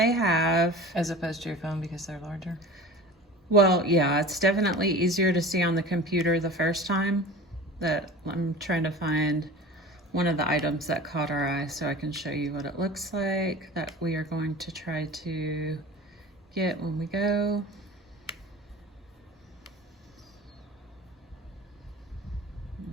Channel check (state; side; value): normal; both; correlation 0.37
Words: have. As opposed to your phone because they're larger? Well, yeah, it's definitely easier to see on the computer the first time. That I'm trying to find one of the items that caught our eye so I can show you what it looks like that we are going to try to get when we go.